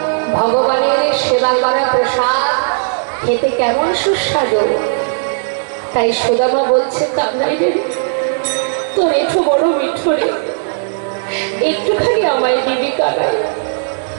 ভগবানের সেবা করা প্রসাদ খেতে কেমন সুস্বাদু। তাই সুদামা বলছে, কানাই রে, তোর একটু বড় মিঠো রে, একটুখানি আমায় দিবি কানাই।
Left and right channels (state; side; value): silent; left; digital silence